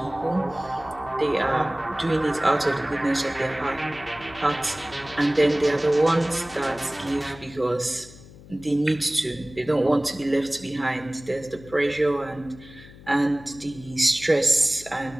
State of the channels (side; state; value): left; noise; hum, 20 dB below the sound